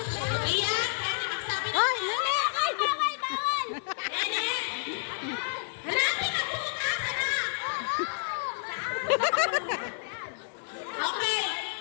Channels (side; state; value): right; silent; digital silence